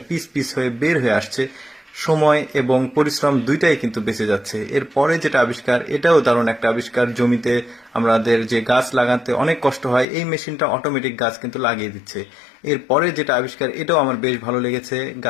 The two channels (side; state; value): right; drops out; at 10.1 s